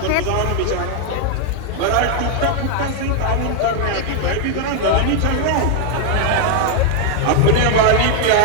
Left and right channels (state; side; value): different; both; correlation 0.00